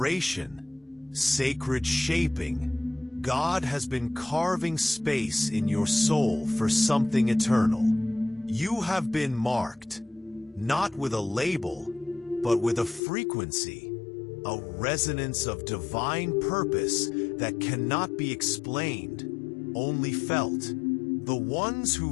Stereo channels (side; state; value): right; drops out; at 13.0 s